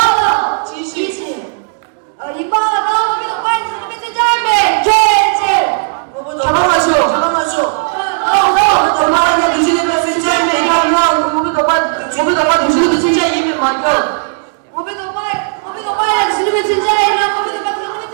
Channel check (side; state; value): left; silent; digital silence